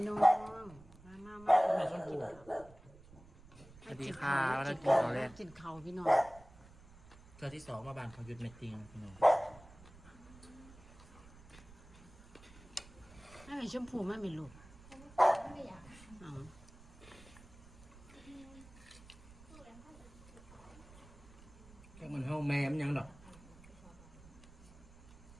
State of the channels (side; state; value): right; noise; rumble, 21 dB below the sound